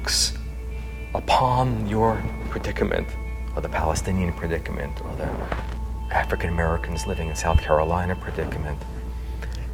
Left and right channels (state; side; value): identical; both; correlation 1.00